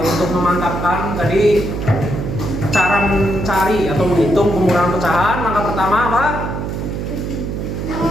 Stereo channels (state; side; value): noise; right; hum, 4 dB below the sound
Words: Untuk memantapkan tadi cara mencari atau menghitung pengurangan pecahan, langkah pertama apa?